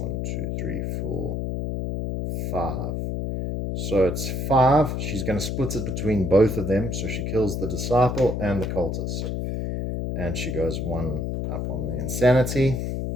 2, 3, 4, 5. So it's 5. She's going to split it between both of them. So she kills the disciple and the cultist. And she goes 1 up on the insanity.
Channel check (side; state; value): left; noise; hum, 2 dB below the sound